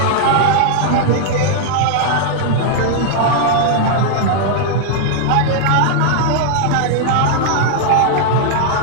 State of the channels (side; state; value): both; different; correlation -0.01